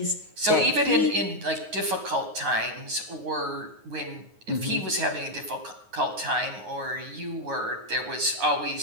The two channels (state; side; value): late; left; 9.5 ms